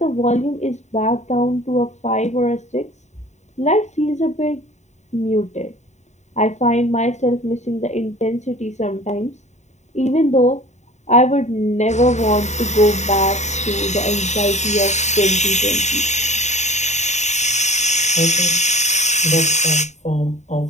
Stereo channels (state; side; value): late; right; 0.34 ms